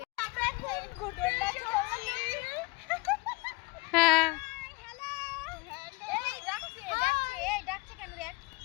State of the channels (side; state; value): right; quieter; 25.8 dB